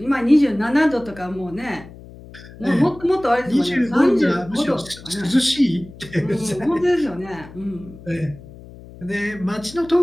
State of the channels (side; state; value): left; noise; hum, 18 dB below the sound